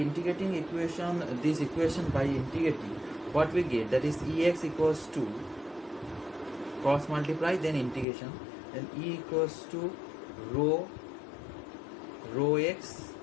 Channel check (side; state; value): right; drops out; at 8.1 s